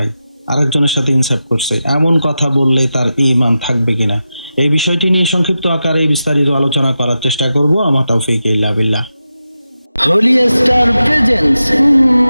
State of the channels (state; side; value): inverted; both; correlation -0.91